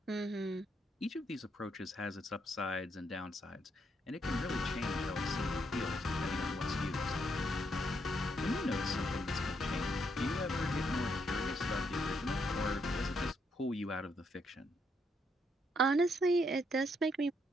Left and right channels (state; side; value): normal; both; correlation 0.76